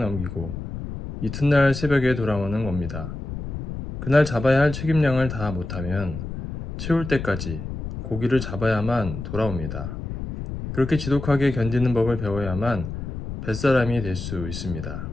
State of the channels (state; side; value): noise; left; rumble, 7 dB below the sound